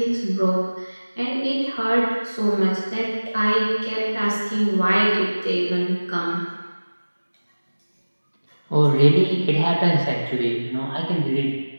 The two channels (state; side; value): inverted; both; correlation -1.00